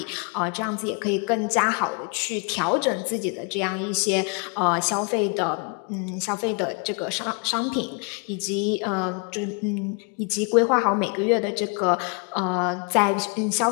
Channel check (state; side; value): quieter; right; 35.7 dB